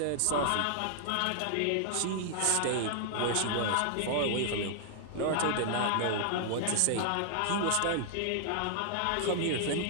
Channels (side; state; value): both; different; correlation -0.01